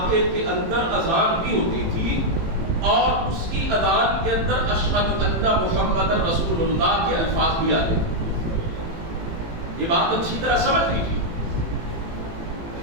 کے اندر اذان بھی ہوتی تھی، اور اس کی اذان کے اندر اشہد ان محمد رسول اللہ کے الفاظ بھی آتے تھے. یہ بات اچھی طرح سمجھ لیجیے.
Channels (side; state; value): left; late; 18 ms